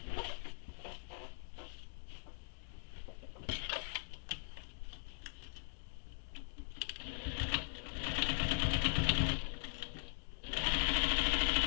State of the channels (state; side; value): silent; right; digital silence